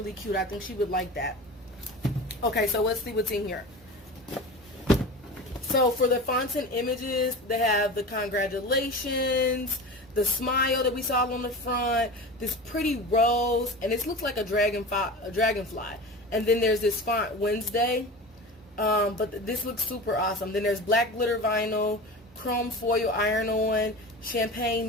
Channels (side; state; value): both; normal; correlation 0.31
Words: cute. I think she would like that. Okay, so let's see what's in here. So for the fonts and images, they have the congratulations, the smile that we saw on the front, this pretty rose, and this looks like a dragonfly. And then there's this font Wednesday. But this looks super awesome. Then there's black glitter vinyl, chrome foil iron-on,